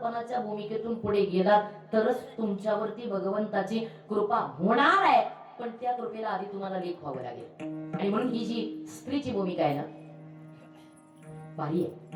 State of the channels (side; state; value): both; identical; correlation 1.00